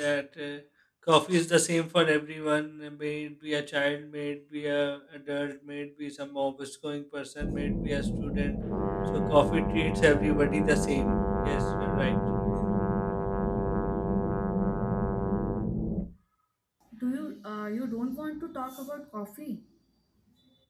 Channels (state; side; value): identical; both; correlation 1.00